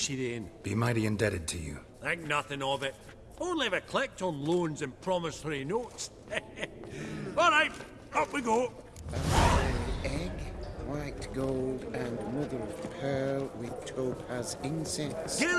you then. Be mighty indebted to you. Think nothing of it. Only if I collect on loans and promissory notes. All right, up we go. Egg, white gold, and mother of pearl with topaz incense.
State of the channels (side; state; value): both; identical; correlation 1.00